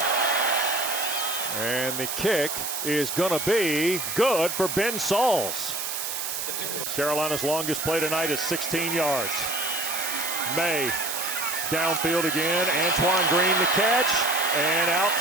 And the kick is going to be good for Ben Sauls. Carolina's longest play tonight is 16 yards. Maye downfield again. Antoine Green the catch. And out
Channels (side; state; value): right; noise; hiss, 4 dB below the sound